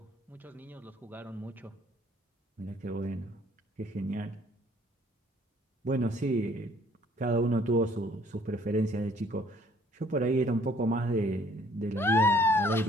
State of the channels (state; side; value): normal; both; correlation 0.60